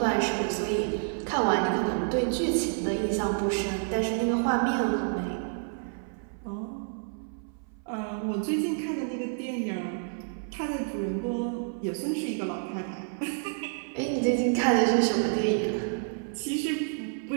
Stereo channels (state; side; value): silent; left; 58 dB below the other